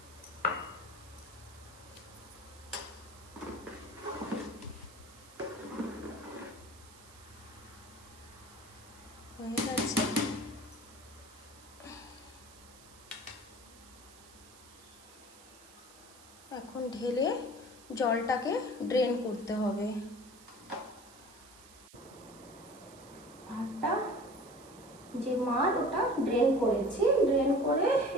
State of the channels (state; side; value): noise; right; hiss, 21 dB below the sound